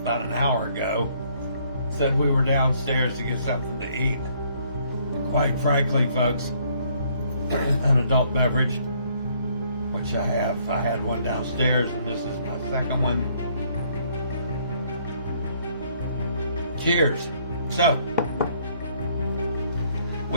an hour ago said we were downstairs to get something to eat. And quite frankly, folks, an adult beverage, which I have. I had one downstairs, and this is my second one. Cheers. So,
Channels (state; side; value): inverted; both; correlation -0.65